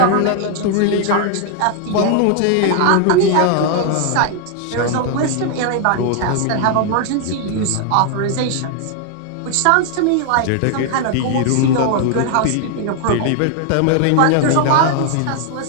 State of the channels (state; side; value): different; both; correlation 0.00